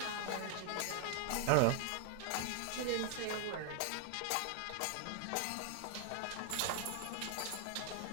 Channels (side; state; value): both; different; correlation 0.00